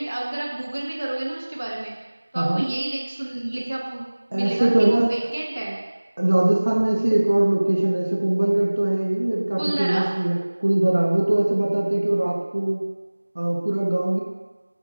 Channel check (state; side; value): inverted; both; correlation -1.00